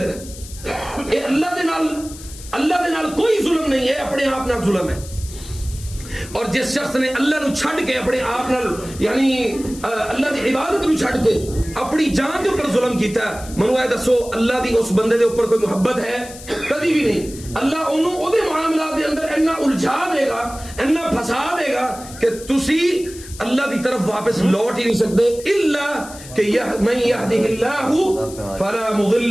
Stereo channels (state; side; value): noise; left; hiss, 16 dB below the sound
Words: نے۔ اے اللہ دے نال کوئی ظلم نہیں ہے، اپنے آپ نال ظلم ہے۔ اور جس شخص نے اللہ نو چھڑ کے اپنے آپ نال یعنی اللہ دی عبادت نو چھڑ کے اپنی جان کے اوپر ظلم کیتا ہے، منو اے دسو اللہ دی اس بندے دے اوپر کوئی محبت ہے؟ کبھی بھی نہیں۔ اللہ انہوں او دے معاملات دے اندر اتنا الجھا دے گا، اتنا پھنسا دے گا کہ تسی اللہ دی طرف واپس لوٹ ہی نہیں سکتے۔ الا کہ من یہدہ اللہ فلا مضل